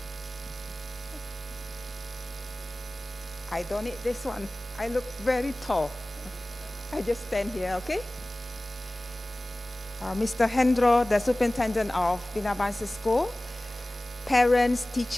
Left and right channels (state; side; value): normal; both; correlation 0.98